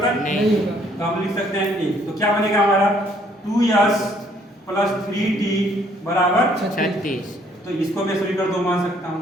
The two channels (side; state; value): both; normal; correlation 0.64